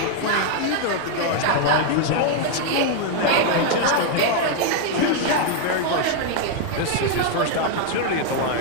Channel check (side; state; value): both; different; correlation 0.00